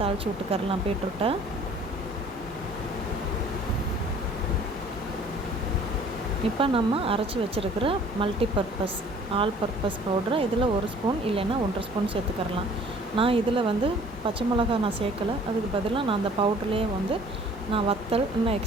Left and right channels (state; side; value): normal; both; correlation 0.53